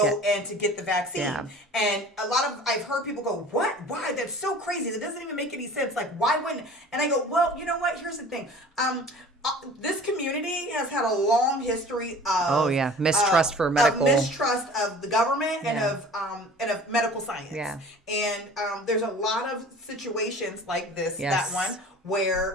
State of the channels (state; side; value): normal; both; correlation 0.44